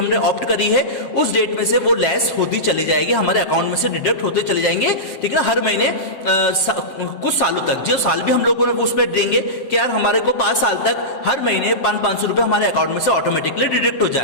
ऑप्ट करी है, उस डेट में से वो लेस होती चली जाएगी, हमारे अकाउंट में से डिडक्ट होते चले जाएंगे, ठीक है ना। हर महीने कुछ सालों तक, जो साल भी हम लोगों ने उसमें देंगे कि यार हमारे को 5 साल तक हर महीने 500 रुपए हमारे अकाउंट में से ऑटोमेटिकली डिडक्ट हो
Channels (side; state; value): right; late; 7.5 ms